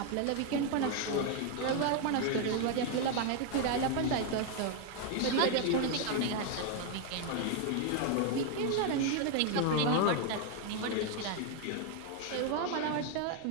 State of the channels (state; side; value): different; both; correlation 0.01